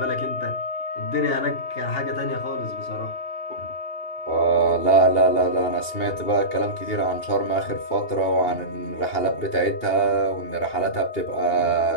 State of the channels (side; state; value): right; late; 2.8 ms